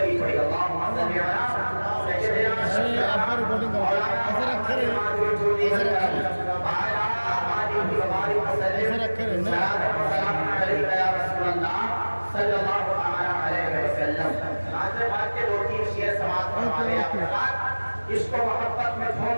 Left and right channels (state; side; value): inverted; both; correlation -1.00